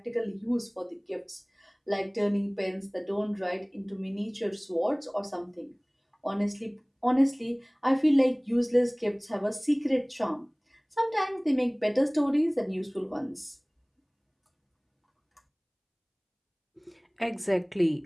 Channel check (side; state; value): both; identical; correlation 1.00